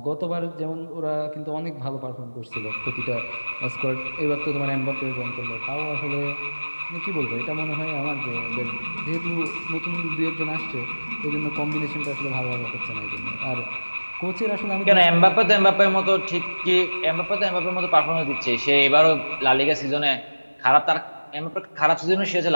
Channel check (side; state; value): both; inverted; correlation -1.00